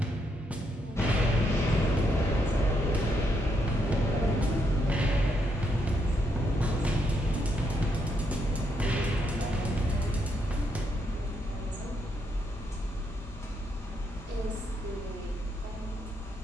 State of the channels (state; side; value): normal; both; correlation 0.77